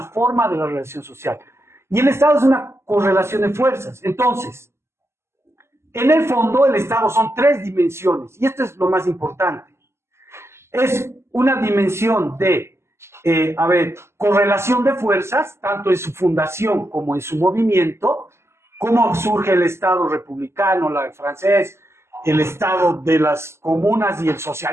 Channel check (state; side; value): late; left; 0.13 ms